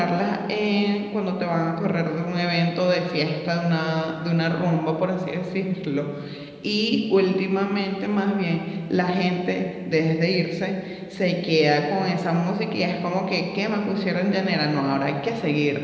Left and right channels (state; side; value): identical; both; correlation 1.00